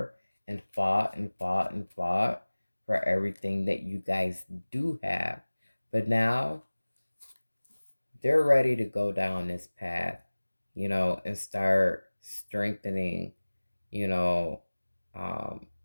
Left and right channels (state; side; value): inverted; both; correlation -1.00